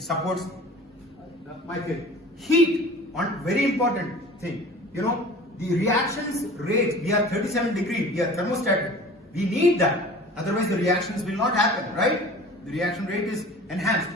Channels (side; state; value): both; normal; correlation 0.42